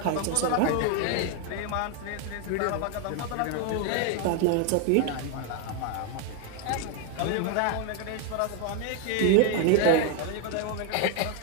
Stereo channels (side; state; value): both; different; correlation 0.01